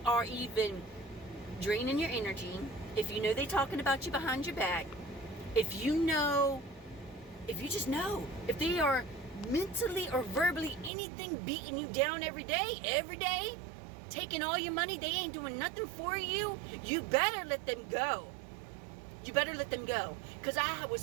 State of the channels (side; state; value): left; drops out; at 10.9 s